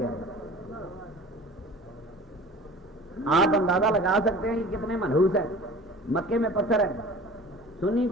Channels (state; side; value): normal; both; correlation 0.42